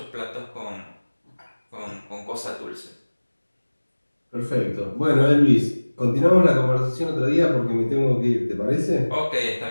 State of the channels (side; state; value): both; inverted; correlation -1.00